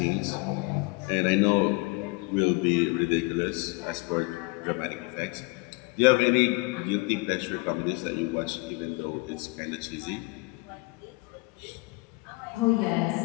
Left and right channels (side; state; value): right; quieter; 26.5 dB